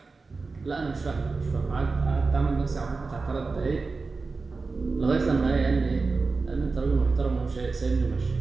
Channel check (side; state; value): left; quieter; 4.1 dB